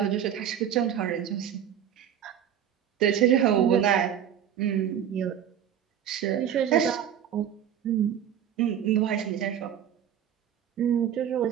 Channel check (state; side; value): quieter; left; 9.6 dB